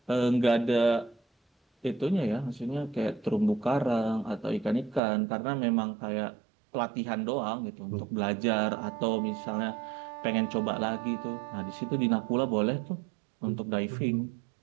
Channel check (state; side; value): drops out; left; at 5.0 s